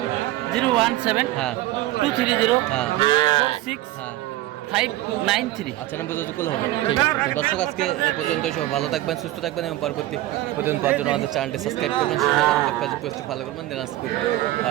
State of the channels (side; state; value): left; quieter; 15.9 dB